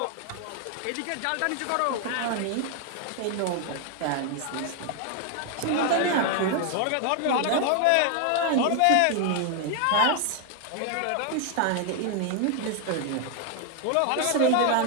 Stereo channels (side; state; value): both; different; correlation 0.01